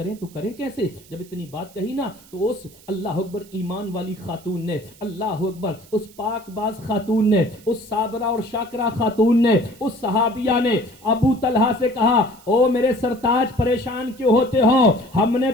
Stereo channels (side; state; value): right; noise; hiss, 24 dB below the sound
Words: تو کریں کیسے؟ جب اتنی بات کہی نا تو اس اللہ اکبر ایمان والی خاتون نے، اللہ اکبر اس پاک باز خاتون نے، اس صابرہ اور شاکرہ خاتون نے، اس صحابیہ نے ابو طلحہ سے کہا او میرے سرتاج پریشان کیوں ہوتے ہو، ہم نے